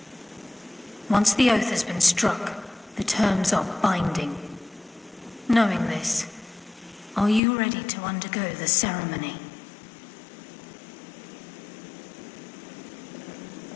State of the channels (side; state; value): right; drops out; at 7.4 s